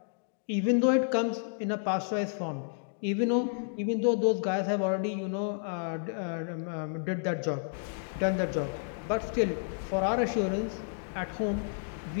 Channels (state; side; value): silent; right; digital silence